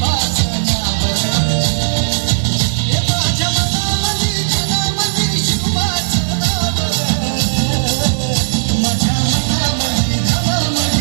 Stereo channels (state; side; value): silent; left; digital silence